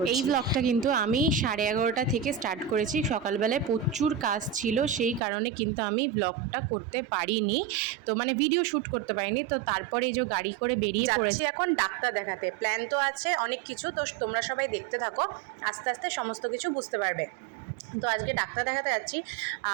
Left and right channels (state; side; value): drops out; left; at 5.2 s